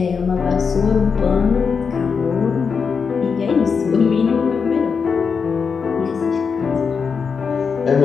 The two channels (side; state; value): right; quieter; 5.8 dB